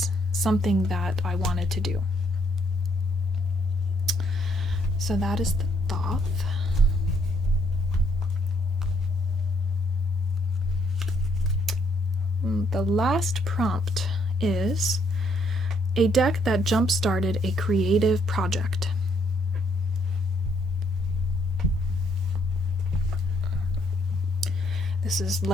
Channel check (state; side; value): normal; both; correlation 0.70